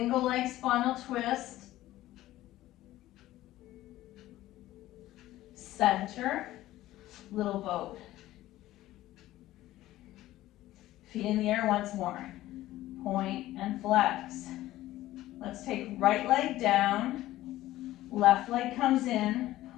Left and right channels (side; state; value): right; quieter; 15.4 dB